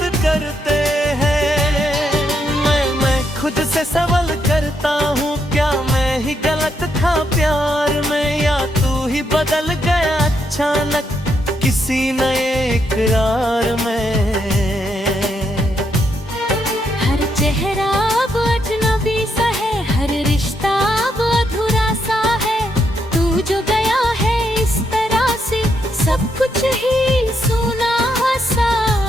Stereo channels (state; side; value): normal; both; correlation 0.78